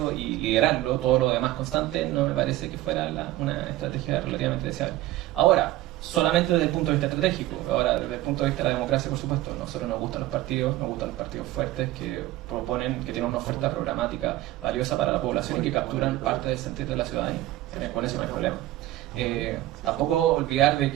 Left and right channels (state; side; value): quieter; left; 16.0 dB